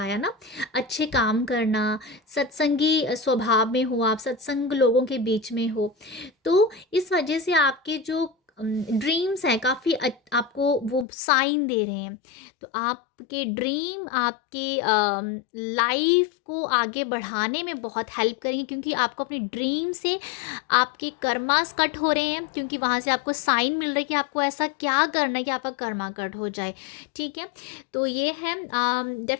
ना, अच्छे काम करना, सत्संगी स्वभाव में हो, आप सत्संग लोगों के बीच में हो, तो इस वजह से आपके जो ड्रीम्स हैं काफ़ी आपको वो साइन दे रहे हैं। तो आपके ड्रीम आपके लाइफ को आगे बढ़ाने में बहुत हेल्प करेंगे, क्योंकि आपको अपने ड्रीम से आपके कर्मास कट हो रहे हैं, क्योंकि वहाँ से आपको साइन मिल रहा है कि आपको ऐसा क्या करना है कि आपका कर्मा कट हो जाए, ठीक है? तो ये है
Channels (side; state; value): right; drops out; at 11.1 s